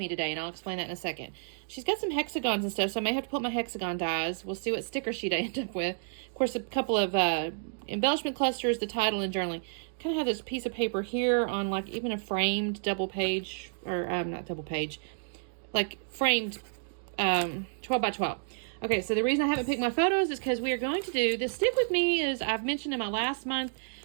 today, and I'll explain that in a second. She's got some hexagons and stuff, so I may have to put my hexagon dies. We'll see what sticker sheet I end up with. Of course, a couple of embellishment clusters, the title, and journaling. Kind of have this piece of paper here on like even a framed double page, or not double page, like framed 12 by 12. Okay, so the reason I haven't picked my photos is because we are going to do this stick with me. Is I've mentioned in my last month,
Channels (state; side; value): silent; left; digital silence